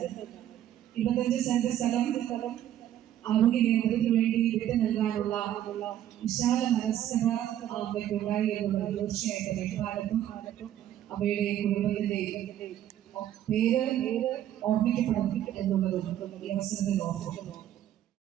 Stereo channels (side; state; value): left; quieter; 11.6 dB